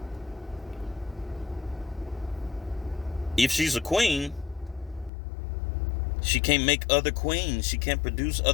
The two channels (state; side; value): drops out; right; at 5.1 s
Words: If she's a queen, she can't make other queens. She can't produce